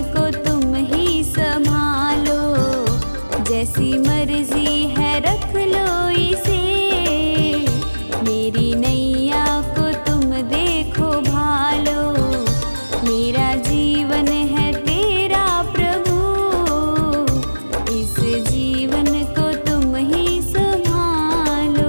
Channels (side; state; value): both; inverted; correlation -1.00